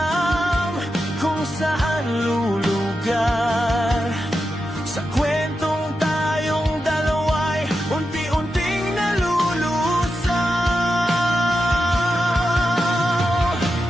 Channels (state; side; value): normal; both; correlation 0.89